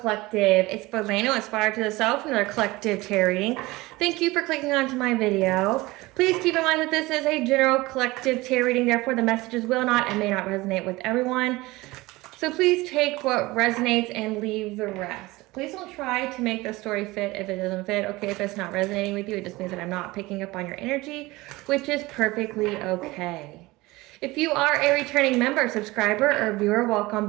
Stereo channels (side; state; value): left; quieter; 20.8 dB